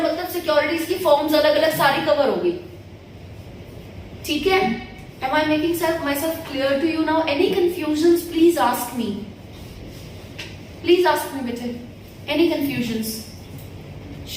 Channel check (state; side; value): identical; both; correlation 1.00